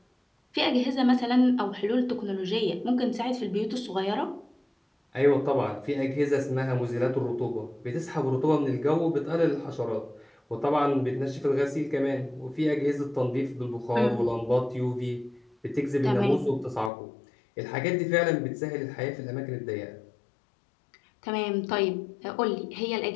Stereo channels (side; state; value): right; drops out; at 16.9 s